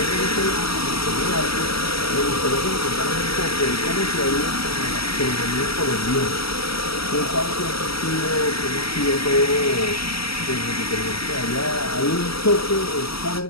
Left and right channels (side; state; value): right; late; 0.75 ms